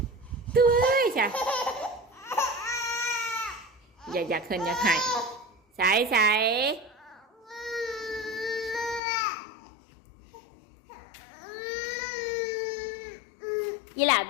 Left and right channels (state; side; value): drops out; right; at 9.0 s